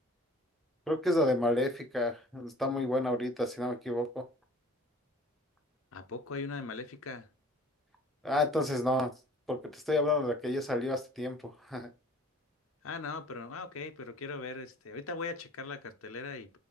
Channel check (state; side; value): normal; both; correlation 0.49